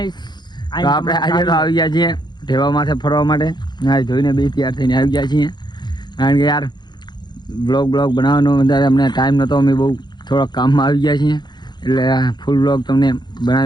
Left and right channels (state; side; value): late; right; 0.21 ms